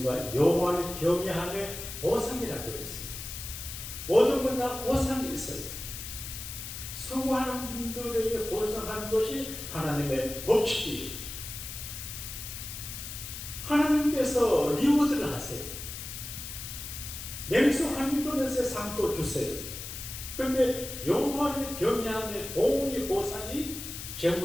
여호와를 경외함의 보상이라고 그랬어요. 모든 건 다 보상이 있어요. 수고하는 분들에게 보상하는 것이 하나님의 법칙이에요. 하나님께서 리워드를 하세요. 냉수 한 그릇에 상도 주세요. 그런데 여호와를 경외함의 보응의 보상이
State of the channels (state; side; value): noise; left; hiss, 9 dB below the sound